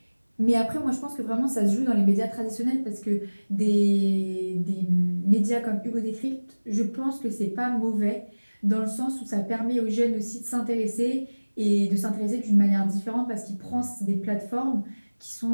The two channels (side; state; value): both; inverted; correlation -1.00